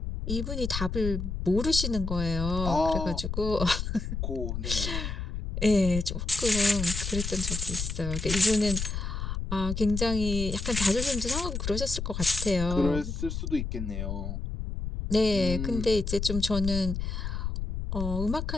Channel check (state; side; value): noise; left; rumble, 4 dB below the sound